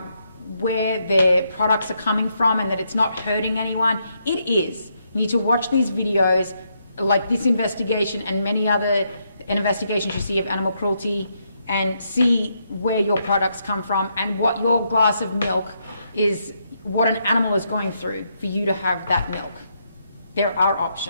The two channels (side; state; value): both; inverted; correlation -0.77